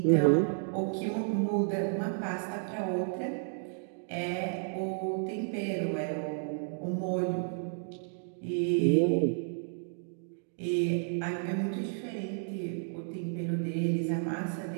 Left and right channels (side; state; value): left; silent; digital silence